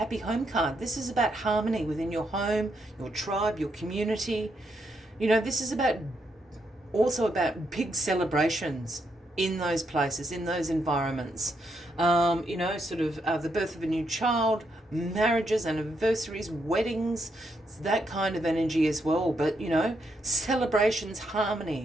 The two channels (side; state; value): both; normal; correlation 0.79